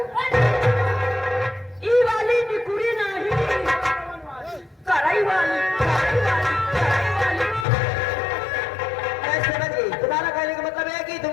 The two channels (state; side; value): drops out; right; at 7.7 s